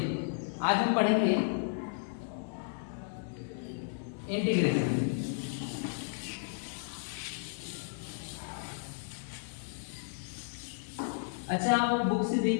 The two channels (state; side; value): silent; right; 55 dB below the other